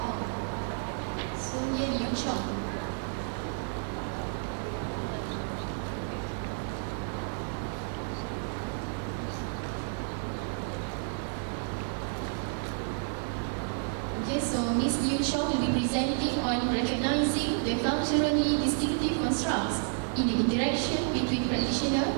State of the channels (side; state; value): left; silent; 57 dB below the other